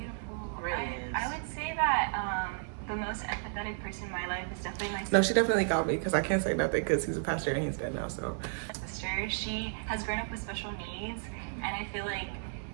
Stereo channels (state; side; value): silent; left; digital silence